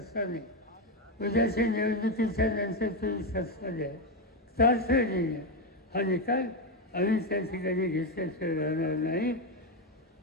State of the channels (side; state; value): both; normal; correlation 0.08